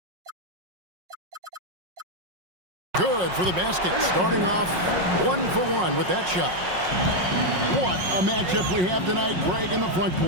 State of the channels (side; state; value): left; late; 5.5 ms